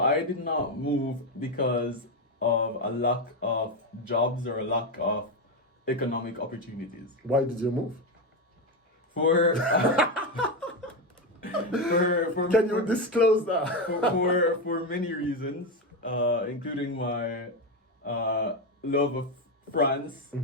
did not move because of a lack of jobs or a lack of economic opportunities. Why did you move? For Can you disclose that? for many reasons, including my love of France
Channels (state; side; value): normal; both; correlation 0.10